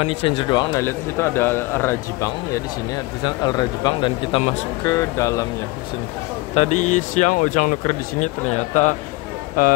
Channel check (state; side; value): quieter; right; 22.3 dB